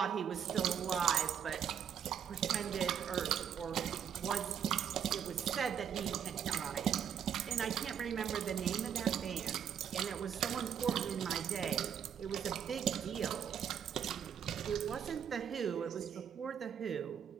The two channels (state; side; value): quieter; left; 8.4 dB